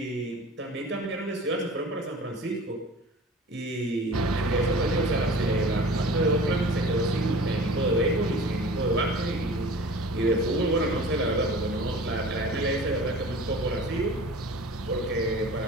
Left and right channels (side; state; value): both; normal; correlation 0.41